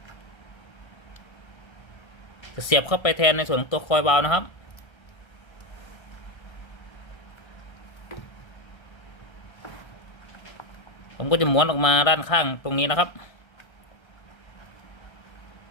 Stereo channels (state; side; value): late; right; 1.3 ms